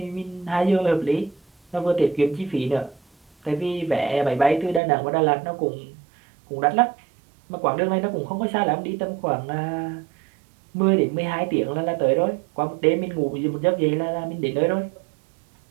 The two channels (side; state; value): left; drops out; at 4.8 s